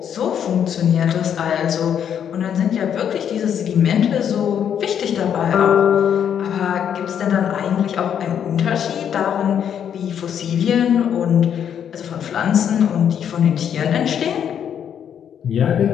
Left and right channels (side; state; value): right; quieter; 8.7 dB